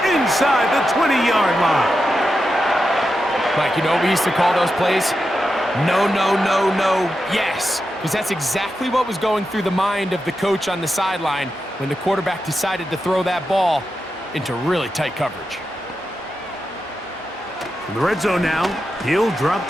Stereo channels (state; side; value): normal; both; correlation 0.89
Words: inside the 20-yard line. Mike, you know what we used to call those plays? No, no, no, no, yes. Because that's exactly what was going through the mind of the coach on the sideline when the quarterback decided to throw that ball into really tight coverage. In the red zone now, he'll drop